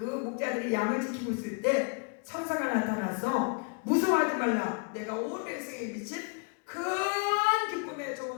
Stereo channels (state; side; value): quieter; right; 34.8 dB